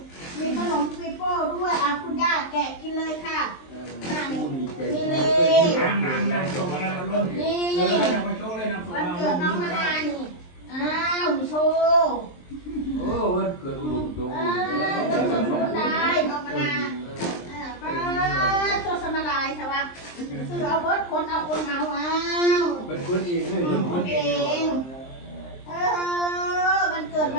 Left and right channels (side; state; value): right; late; 23 ms